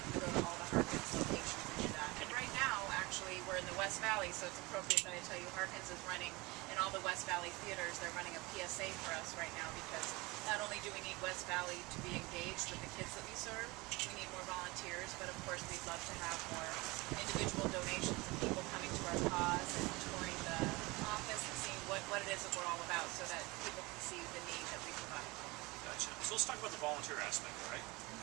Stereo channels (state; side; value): quieter; left; 23.6 dB